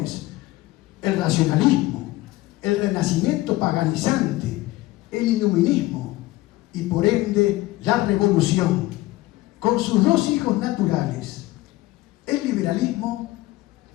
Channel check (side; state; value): right; quieter; 18.1 dB